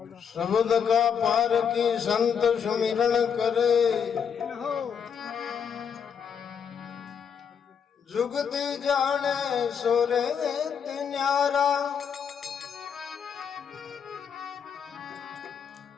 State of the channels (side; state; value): right; quieter; 7.2 dB